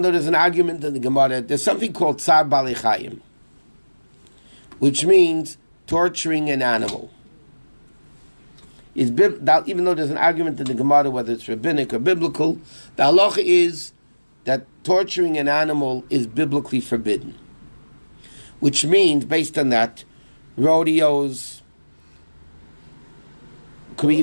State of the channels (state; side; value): inverted; both; correlation -1.00